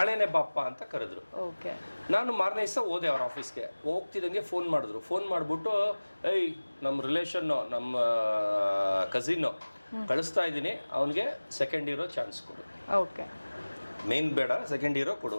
ಬಾಪ್ಪ ಅಂತ ಕರೆದ್ರು. ಓಕೆ. ನಾನು ಮಾರನೇ ದಿವಸ ಹೋದೆ ಅವ್ರ ಆಫೀಸ್ಗೆ. ಹೋಗ್ತಿದ್ದಂಗೆ ಫೋನ್ ಮಾಡಿದ್ರು. ಫೋನ್ ಮಾಡಿಬಿಟ್ಟು, ಏಯ್ ನಮ್ಮ ರಿಲೇಷನ್ನು, ನಮ್ಮ ಕಸಿನ್ನು ಕಳಿಸ್ತಾ ಇದ್ದೀನಿ, ಅವನಿಗೆ ಸೆಕೆಂಡ್ ಇರೋ ಚಾನ್ಸ್ ಕೊಡು. ಓಕೆ. ಮೇನ್ ಬೇಡ, ಸೆಕೆಂಡ್ ಹೀರೋ ಕೊಡು.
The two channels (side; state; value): both; inverted; correlation -1.00